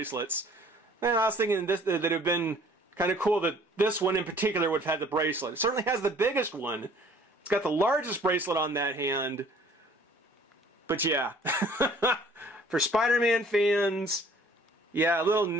And I was thinking that it would have been kind of cool that this one in particular would have had the bracelet. It certainly has the biggest one. It's got the largest bracelet on that hand. But yeah, for Spider-Man fans, yeah, a little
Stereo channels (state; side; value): normal; both; correlation 0.54